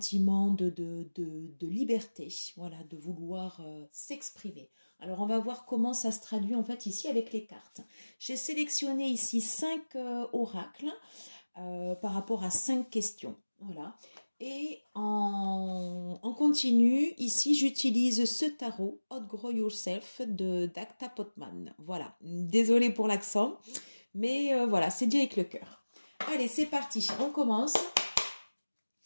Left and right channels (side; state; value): both; inverted; correlation -1.00